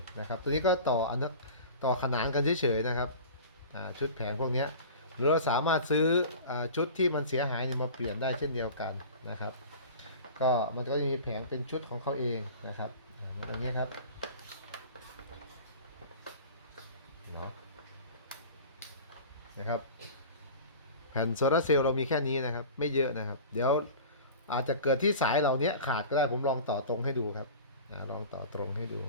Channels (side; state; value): both; inverted; correlation -0.38